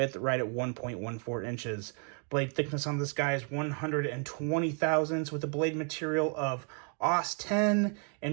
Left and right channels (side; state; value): left; quieter; 39.7 dB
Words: right at 1.14 inches. Blade thickness on this guy is 120 thousandths with a blade material of AUS 10,